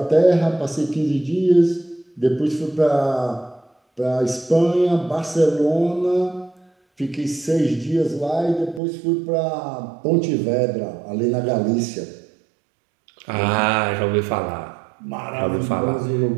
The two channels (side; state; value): left; drops out; at 8.8 s